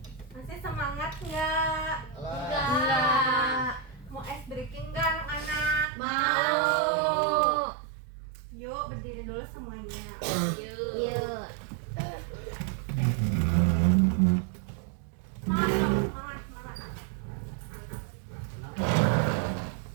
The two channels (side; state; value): left; drops out; at 5.9 s